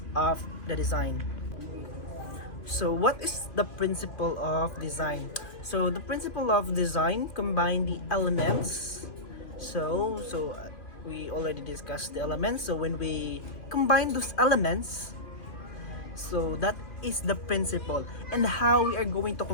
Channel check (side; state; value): right; late; 2.6 ms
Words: of the design. So what is the principle of design? So the principle of design combine the elements. So we already discussed the elements. So when we combine those elements, so that is the principle, and how we are going to